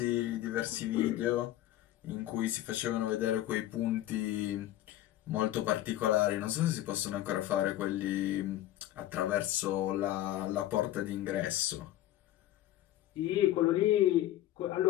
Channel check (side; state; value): right; quieter; 13.9 dB